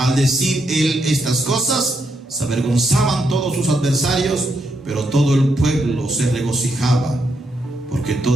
decir él estas cosas, se avergonzaban todos sus adversarios, pero todo el pueblo se regocijaba porque por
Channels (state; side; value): normal; both; correlation 0.79